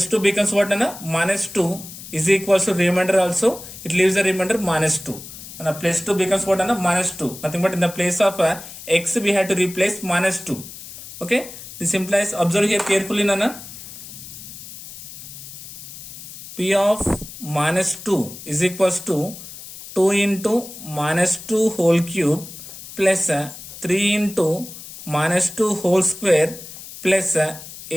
2 becomes what nana? Minus 2 is equals to remainder also. It leaves the remainder minus 2. And plus 2 becomes what nana? Minus 2. Nothing but in the place of x we had to replace minus 2. Okay. This implies, observe here carefully nana. P of minus 2 is equals to 2 into minus 2 whole cube plus 3 into minus 2 whole square plus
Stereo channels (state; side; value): noise; left; hiss, 14 dB below the sound